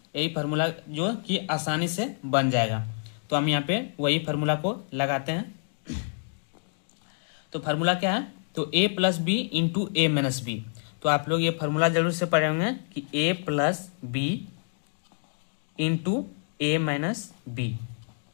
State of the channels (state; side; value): silent; right; digital silence